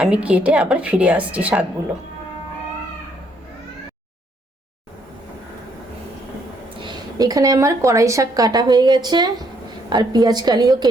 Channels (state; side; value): normal; both; correlation 0.70